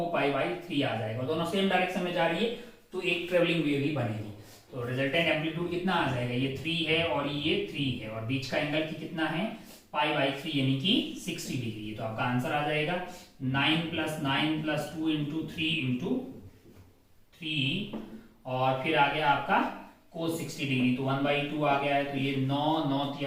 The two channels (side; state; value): both; identical; correlation 1.00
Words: पाई बाई 3 आ जाएगा। दोनों सेम डायरेक्शन में जा रही है तो एक ट्रेवलिंग वेव ही बनेगी। तो रिजल्टेंट एम्पलीट्यूड कितना आ जाएगा, ये 3 है और ये 3 है, और बीच का एंगल की कितना है, पाई बाई 3 यानी कि 60 डिग्री। तो आपका आंसर आ जाएगा 9 + 9 + 2 × 3 × 3, और फिर आ गया आपका cos 60 डिग्री, तो 1/2 आ गया है। तो ये 9 9